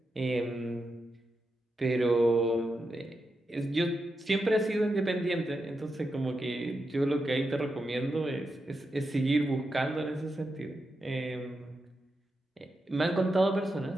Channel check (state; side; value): normal; both; correlation 0.87